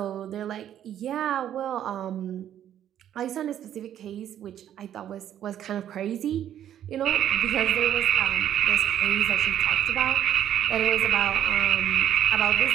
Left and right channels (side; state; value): left; quieter; 10.7 dB